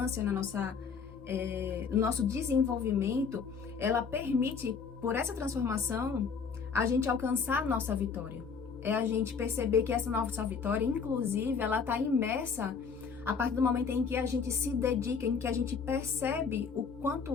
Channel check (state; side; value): quieter; right; 5.8 dB